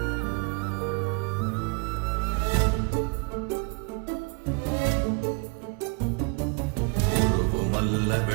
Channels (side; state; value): left; quieter; 32.4 dB